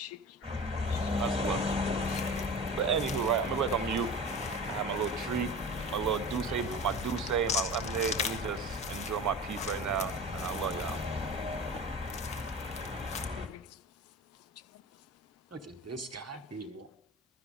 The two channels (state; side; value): normal; both; correlation 0.34